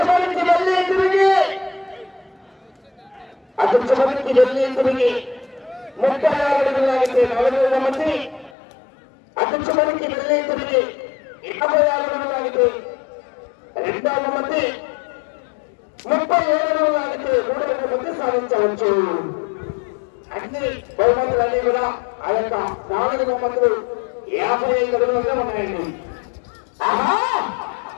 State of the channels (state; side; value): drops out; right; at 8.5 s